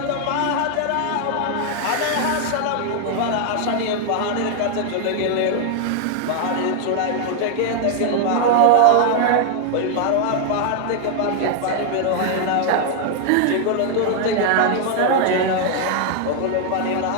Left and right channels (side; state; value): both; different; correlation 0.00